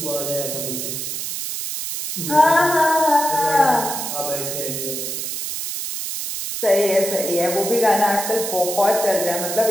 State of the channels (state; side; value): noise; right; hiss, 5 dB below the sound